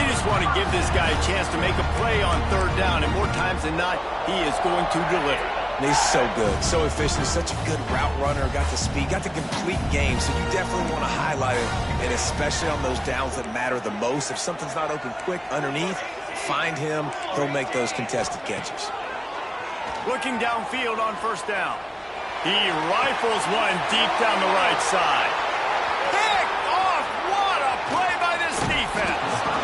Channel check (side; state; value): both; identical; correlation 1.00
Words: just want to give this guy a chance to make a play on third down, and more times than not, he is going to deliver. He's so good, so efficient, such a good route runner, got the speed, got the complete game, so you definitely want to highlight it, and especially on those downs that matter the most. If something's not open quick underneath, find him, he'll make those contested catches. Looking downfield on first down. He rifles one deep down the right side. Picked off! What a play by this defense!